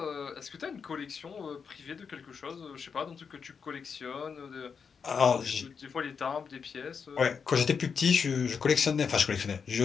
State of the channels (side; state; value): right; quieter; 6.1 dB